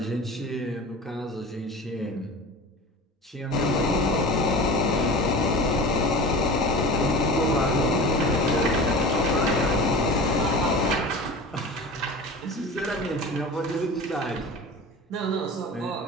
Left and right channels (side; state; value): both; normal; correlation 0.35